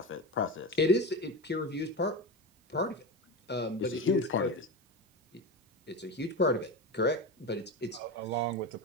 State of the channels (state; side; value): normal; both; correlation 0.22